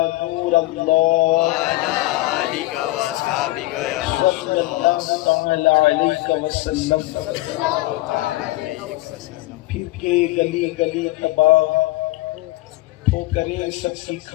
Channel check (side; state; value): right; quieter; 19.0 dB